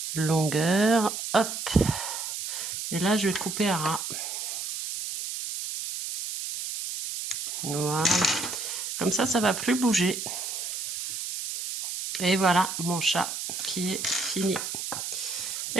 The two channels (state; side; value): noise; right; hiss, 5 dB below the sound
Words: longueur. Hop. Et là, je vais couper à ras. Voilà. Comme ça va plus bouger. Et voilà mon chat qui est fini.